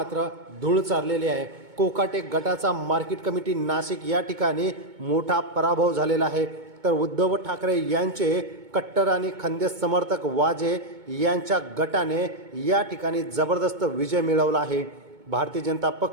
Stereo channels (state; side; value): late; left; 2.2 ms